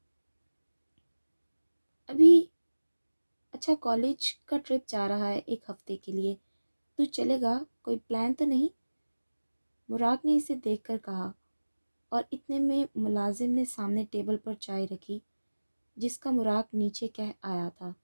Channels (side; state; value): both; inverted; correlation -1.00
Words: ابھی؟ اچھا، کالج کا ٹرپ جا رہا ہے 1 ہفتے کے لیے، تو چلے گا؟ کوئی پلان تو نہیں؟ مراق نے اسے دیکھ کر کہا، اور اتنے میں ملازم نے سامنے ٹیبل پر چائے رکھی جس کا مراق نیچے کہہ آیا تھا۔